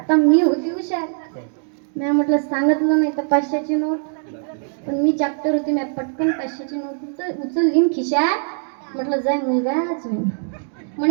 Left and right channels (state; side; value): silent; left; 65 dB below the other